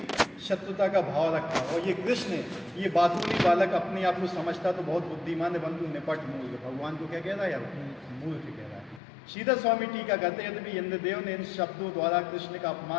शत्रुता का भाव रखा। और ये कृष्ण, ये बातूनी बालक अपने आप को समझता तो बहुत बुद्धिमान है, परंतु निपट मूर्ख। भगवान को क्या कह रहा है यार? मूर्ख कह रहा है। श्रीधर स्वामी टीका कहते हैं, यदि इंद्रदेव ने इन शब्दों द्वारा कृष्ण का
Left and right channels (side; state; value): right; drops out; at 9.0 s